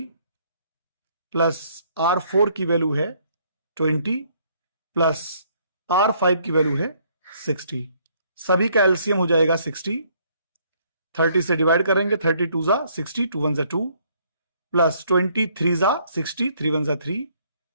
प्लस R4 की वैल्यू है 20 प्लस R5 की वैल्यू है 60। सभी का एलसीएम हो जाएगा 60। 30 से डिवाइड करेंगे 32 जा 60, 2 1 जा 2 प्लस 23 जा 60, 3 1 जा 3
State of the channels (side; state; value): both; inverted; correlation -0.66